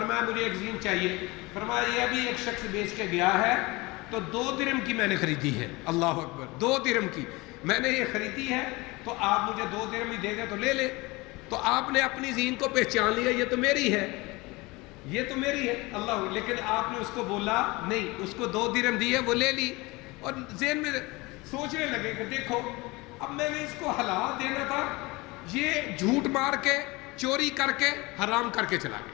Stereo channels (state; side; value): quieter; right; 23.3 dB